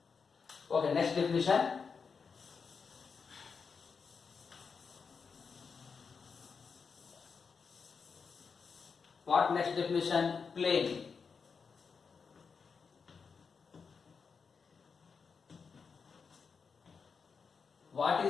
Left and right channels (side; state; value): right; quieter; 5.5 dB